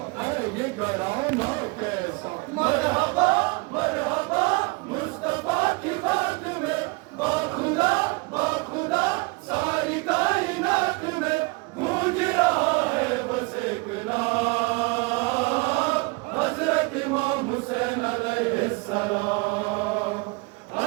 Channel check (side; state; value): left; quieter; 27.7 dB